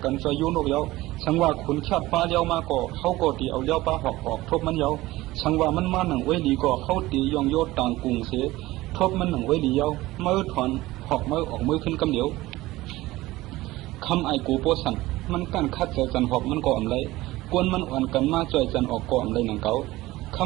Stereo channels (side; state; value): left; quieter; 18.2 dB